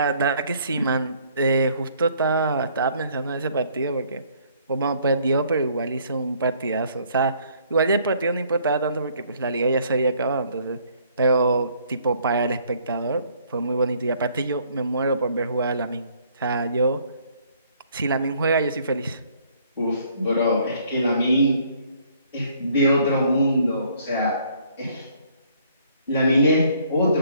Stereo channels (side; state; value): both; inverted; correlation -0.63